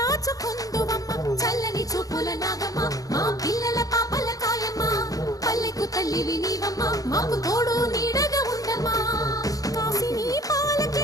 చల్లని చూపుల నాగమ్మ మా పిల్లల పాపల కాయమ్మ పల్లెకు తల్లివి నీవమ్మ మాకు తోడు నీడగా ఉండమ్మా కాసిని పాలకి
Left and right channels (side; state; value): right; late; 0.17 ms